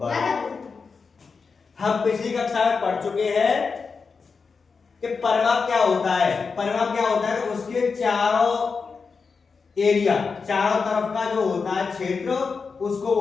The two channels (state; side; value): quieter; right; 5.0 dB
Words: हम पिछली कक्षा में पढ़ चुके हैं कि परिमाप क्या होता है। परिमाप क्या होता है, उसके चारों एरिया, चारों तरफ का जो होता है क्षेत्र, उसको